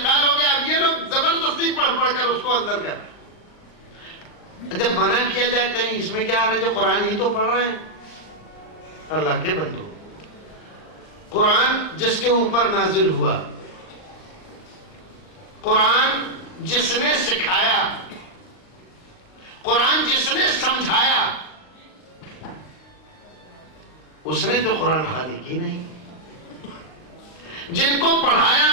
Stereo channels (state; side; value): late; right; 39 ms